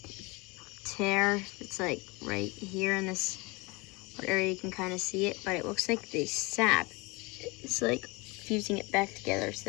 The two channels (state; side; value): quieter; right; 26.0 dB